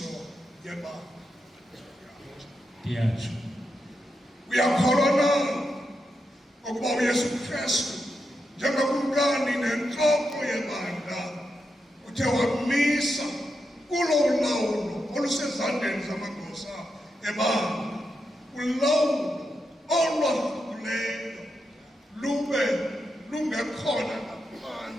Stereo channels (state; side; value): normal; both; correlation 0.86